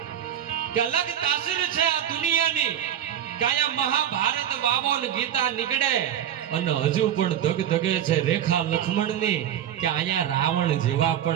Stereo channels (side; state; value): left; quieter; 10.2 dB